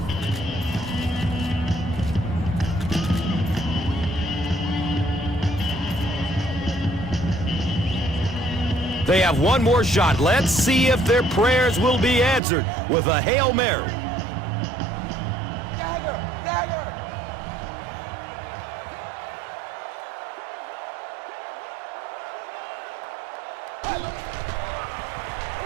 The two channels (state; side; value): drops out; left; at 12.4 s